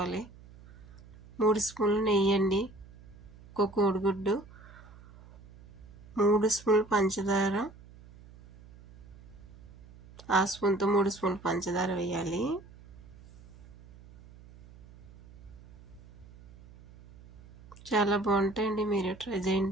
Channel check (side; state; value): right; noise; hum, 21 dB below the sound